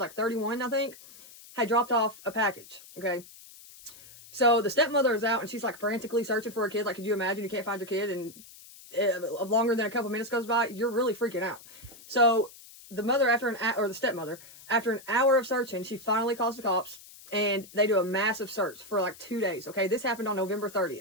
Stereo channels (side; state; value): left; noise; hiss, 20 dB below the sound